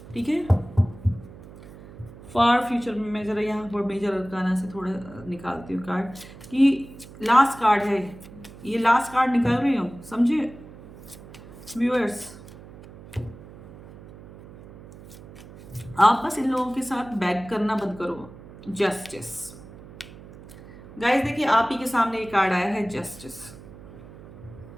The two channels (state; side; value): noise; right; hum, 18 dB below the sound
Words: ठीक है, फार फ्यूचर में मैं जरा यहाँ पर मेजर अरकाना से थोड़ा निकालती हूँ कार्ड, कि लास्ट कार्ड है ये, लास्ट कार्ड निकाल रही हूँ, समझे व्यूअर्स? आप बस इन लोगों के साथ बैक करना बंद करो। जस्टिस गाइस, देखिए आप ही के सामने ये कार्ड आया है, जस्टिस।